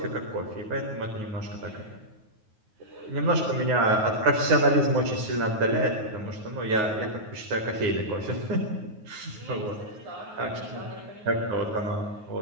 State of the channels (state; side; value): late; left; 9.5 ms